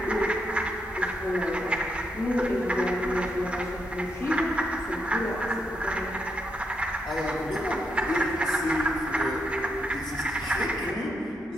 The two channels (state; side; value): normal; both; correlation 0.80